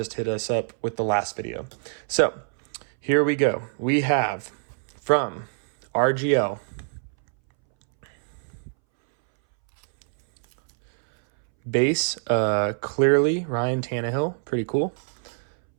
hit us up with the last video. So here we go. We have from RGL base, clearly Ryan Tannehill, pretty cool.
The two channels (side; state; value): left; silent; 62 dB below the other